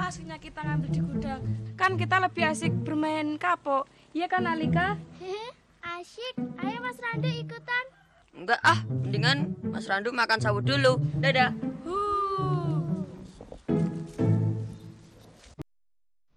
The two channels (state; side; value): identical; both; correlation 1.00